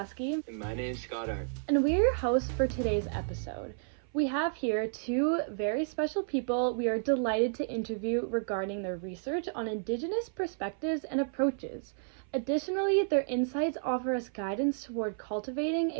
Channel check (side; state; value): left; silent; 57 dB below the other